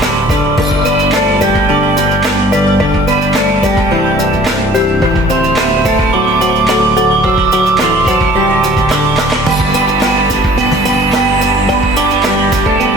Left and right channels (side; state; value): both; normal; correlation 0.52